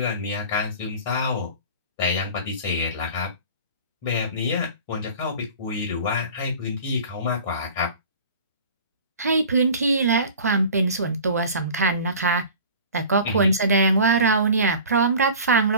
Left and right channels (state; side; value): inverted; both; correlation -0.40